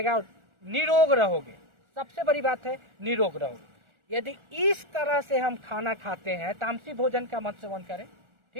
और निरोग रहोगे। सबसे बड़ी बात है निरोग रहोगे। यदि इस तरह से हम खाना खाते हैं, तामसी भोजन का मत सेवन करें,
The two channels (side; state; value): left; late; 1.4 ms